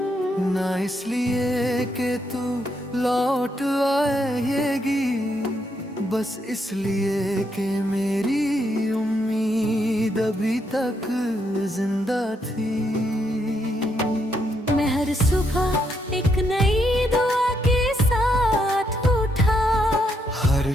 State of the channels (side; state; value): both; normal; correlation 0.77